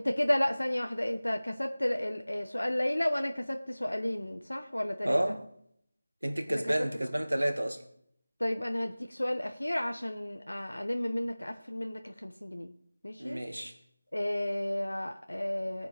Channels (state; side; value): inverted; both; correlation -0.99